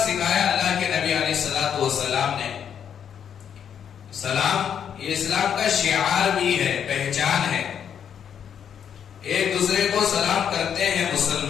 اللہ کے نبی علیہ الصلوۃ والسلام نے۔ سلام یہ اسلام کا شعار بھی ہے، پہچان ہے۔ ایک دوسرے کو سلام کرتے ہیں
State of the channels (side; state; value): right; quieter; 8.4 dB